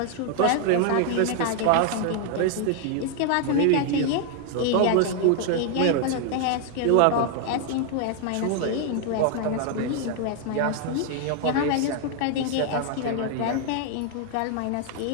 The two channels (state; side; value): different; both; correlation 0.00